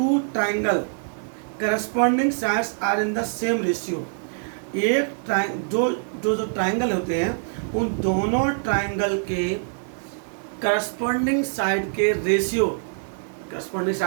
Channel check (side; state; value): left; silent; digital silence